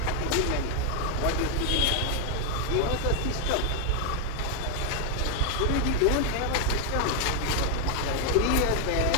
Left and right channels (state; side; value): normal; both; correlation 0.01